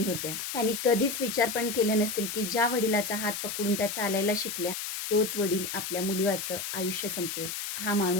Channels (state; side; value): noise; left; hiss, 5 dB below the sound